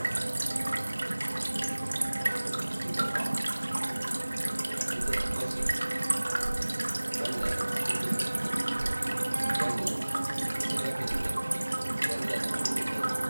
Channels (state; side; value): inverted; both; correlation -1.00